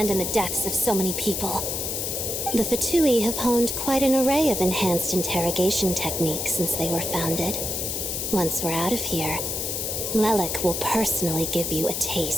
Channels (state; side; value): noise; left; hiss, 2 dB below the sound